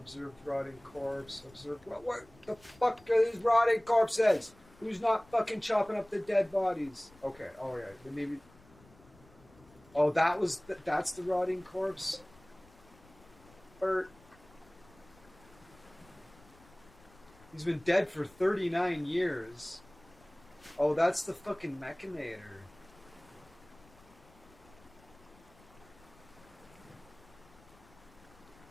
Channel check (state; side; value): noise; left; rumble, 26 dB below the sound